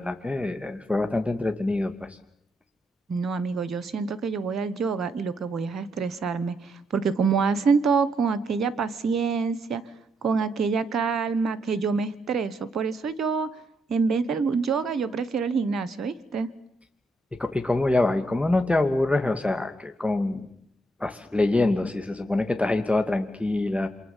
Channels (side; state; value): both; normal; correlation 0.78